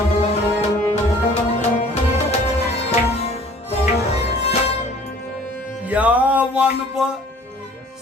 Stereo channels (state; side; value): normal; both; correlation 0.51